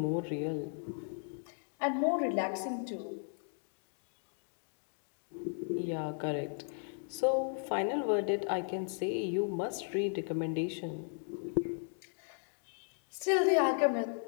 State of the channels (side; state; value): right; silent; 54 dB below the other